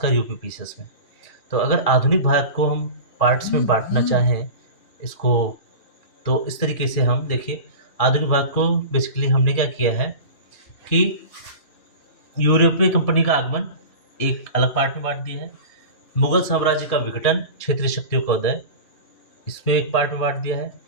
यूपी पीसीएस में। तो अगर आधुनिक भारत को हम पार्ट्स में बाँटना चाहें इसको, तो इस तरीके से हम देखिए, आधुनिक भारत को बेसिकली हमने क्या किया है कि यूरोपीय कंपनी का आगमन एक अलग पार्ट में बाँट दिया है। मुगल साम्राज्य का विघटन, क्षेत्रीय शक्तियों का उदय, इसमें एक पार्ट में बाँट दिया है।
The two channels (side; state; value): right; late; 2.5 ms